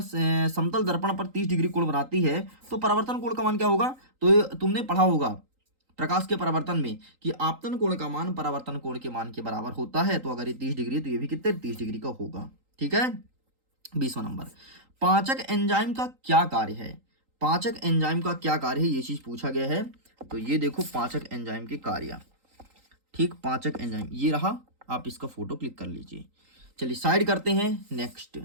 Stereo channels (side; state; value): left; late; 3.8 ms